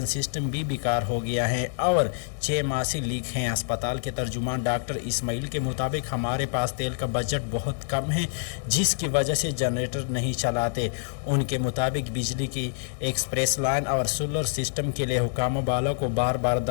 सिस्टम भी बेकार हो गया है और 6 माह से लीक हैं। अस्पताल के तर्जुमान डॉक्टर इस्माइल के मुताबिक हमारे पास तेल का बजट बहुत कम है, जिसकी वजह से जनरेटर नहीं चलाते। उनके मुताबिक बिजली की एक्सप्रेस लाइन और सोलर सिस्टम के लिए हुकाम वालों को बार बार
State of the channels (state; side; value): silent; right; digital silence